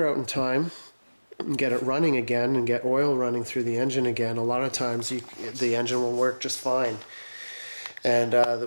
out in time and get it running again and get oil running through the engine again. A lot of times the engine will work just fine and there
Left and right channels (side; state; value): both; inverted; correlation -1.00